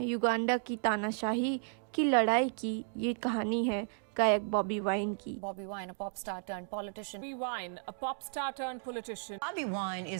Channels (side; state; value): left; silent; 55 dB below the other